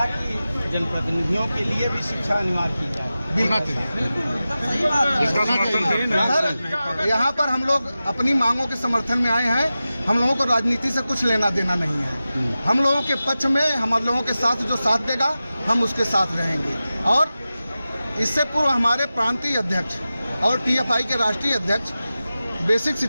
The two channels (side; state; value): both; inverted; correlation -0.94